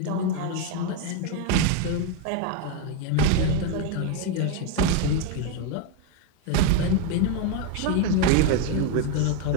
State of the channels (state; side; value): different; both; correlation 0.01